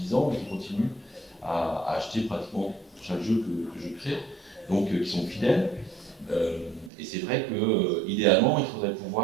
ans et qui continuent à acheter pratiquement chaque jeu que je crée, donc qui sont fidèles. Et c'est vrai que idéalement, il faudrait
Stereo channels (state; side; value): drops out; left; at 6.9 s